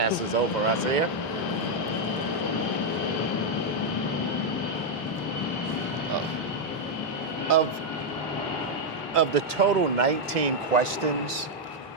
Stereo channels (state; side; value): normal; both; correlation 0.00